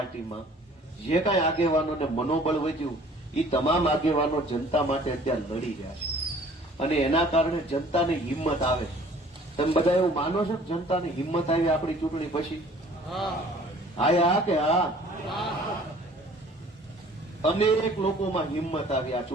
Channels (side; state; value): both; normal; correlation 0.52